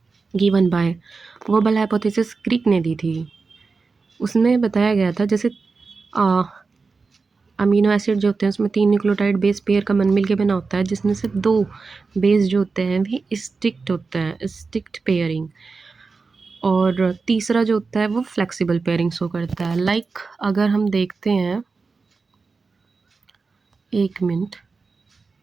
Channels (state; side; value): quieter; left; 4.4 dB